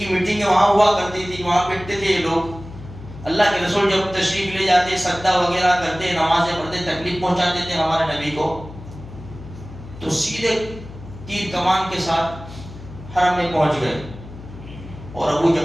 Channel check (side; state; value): left; noise; hum, 15 dB below the sound